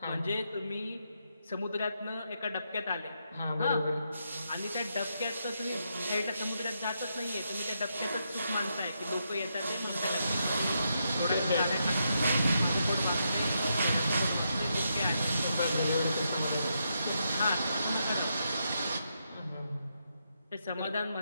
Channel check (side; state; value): both; inverted; correlation -0.81